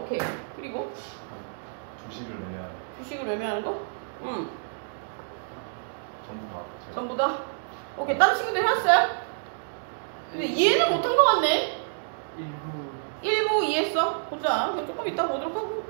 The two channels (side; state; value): left; silent; digital silence